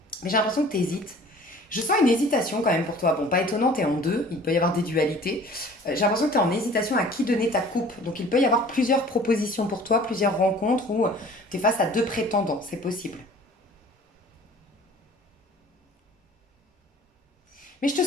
Mais j'ai l'impression que tu hésites. Je sens une hésitation quand même pour toi. Bon, pas étonnant, tu es en deux, il peut y avoir des dualités. J'ai l'impression que tu es en hésitation à qui donner ta coupe. Donc il peut y avoir plusieurs propositions pour toi, plusieurs rencontres où tu es face à deux prétendants, c'est possible. Mais je te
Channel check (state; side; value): normal; both; correlation 0.48